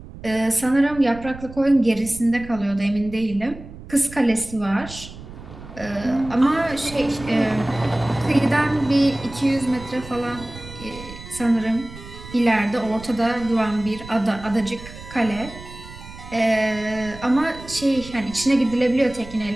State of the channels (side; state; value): right; noise; rumble, 15 dB below the sound